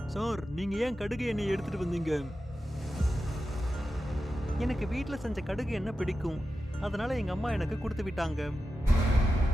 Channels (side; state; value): both; normal; correlation 0.91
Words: சார், நீங்க ஏன் கடுகு எண்ணெய் எடுத்துட்டு வந்தீங்க? எனக்கு வீட்டில் செஞ்ச கடுகு எண்ணெய் பிடிக்கும், அதனால எங்க அம்மா எனக்கு கொடுத்து விட்டாங்க.